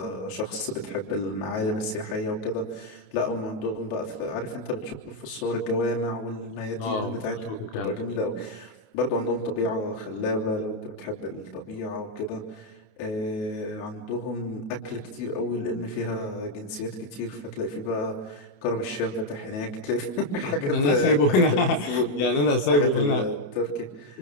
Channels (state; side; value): late; right; 29 ms